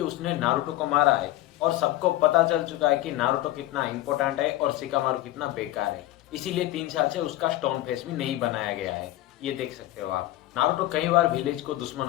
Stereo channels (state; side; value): quieter; right; 15.6 dB